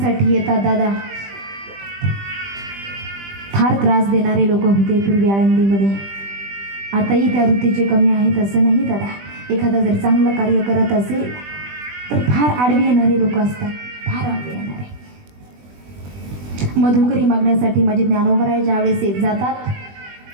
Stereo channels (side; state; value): left; late; 20 ms